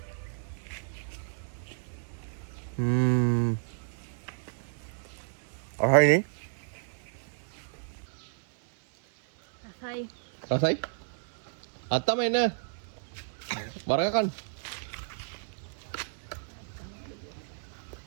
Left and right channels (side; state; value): left; silent; digital silence